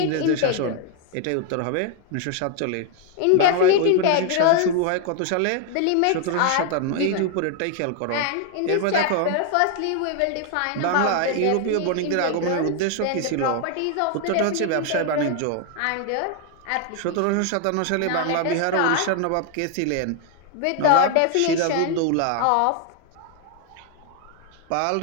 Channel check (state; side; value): different; both; correlation 0.00